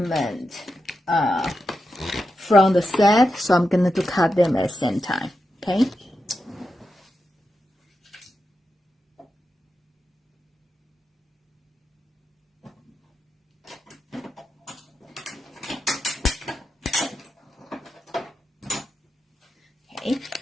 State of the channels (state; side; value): normal; both; correlation 0.88